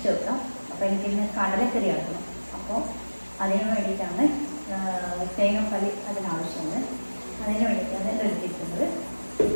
വെക്കാം. അപ്പോൾ എനിക്കിന്ന് കടലക്കറി ആക്കണം. അപ്പോൾ അതിന് വേണ്ടിയിട്ടാണ് തേങ്ങാപ്പാൽ അതിനാവശ്യമുണ്ട്. അതിന് വേണ്ടിയിട്ടാണ് ഇത് എടുത്തിരിക്കുന്നത്.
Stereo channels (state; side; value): inverted; both; correlation -1.00